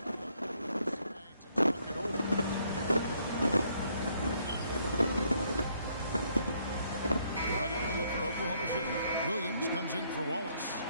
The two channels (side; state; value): both; inverted; correlation -0.69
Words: Oklahoma City. Williams comes in for Wallace.